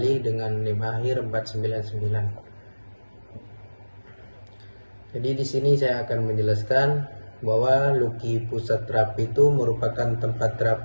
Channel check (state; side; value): inverted; both; correlation -1.00